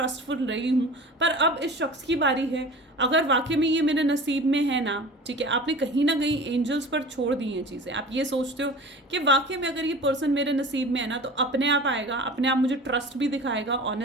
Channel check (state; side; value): normal; both; correlation 0.39